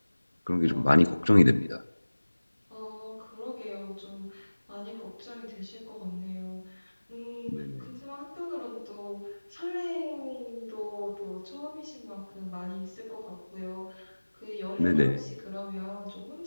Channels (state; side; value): inverted; both; correlation -1.00